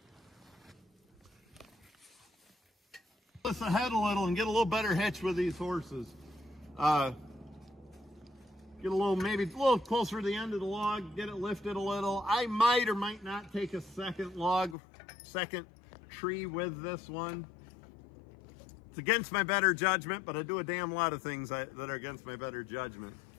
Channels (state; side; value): drops out; right; at 14.8 s